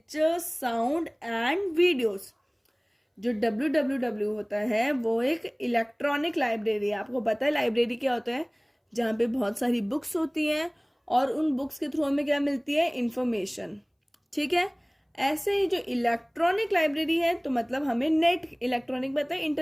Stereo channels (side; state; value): both; identical; correlation 1.00